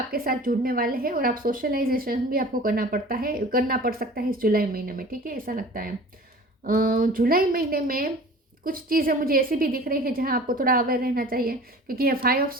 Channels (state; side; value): normal; both; correlation 0.42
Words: साथ जुड़ने वाले हैं और आप सोशलाइजेशन भी आपको करना पड़ सकता है इस जुलाई महीने में, ठीक है, ऐसा लगता है। जुलाई महीने में कुछ चीज़ें मुझे ऐसी भी दिख रही है जहां आपको थोड़ा अवेयर रहना चाहिए, क्योंकि ये 5 ऑफ